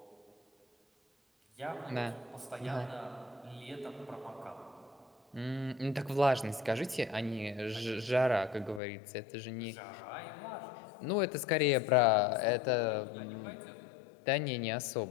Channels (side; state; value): right; drops out; at 8.8 s